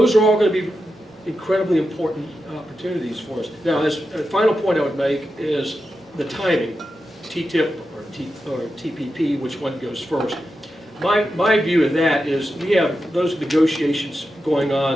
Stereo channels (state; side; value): normal; both; correlation 0.89